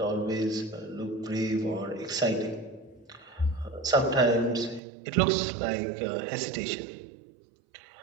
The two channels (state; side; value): drops out; left; at 4.8 s